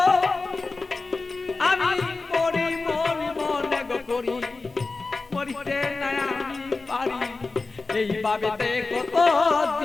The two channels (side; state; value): right; quieter; 3.7 dB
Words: আমি মরি মরি মনে গো করি মরিতে না আমি পারি এইভাবে কত